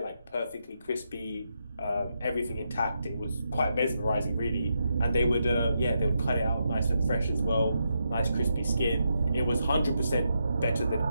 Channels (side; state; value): both; inverted; correlation -0.82